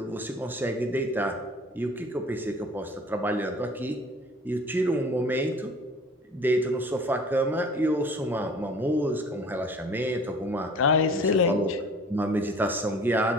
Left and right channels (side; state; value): both; normal; correlation 0.48